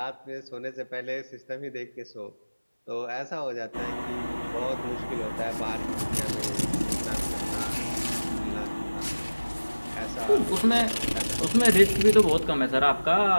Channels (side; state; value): both; inverted; correlation -1.00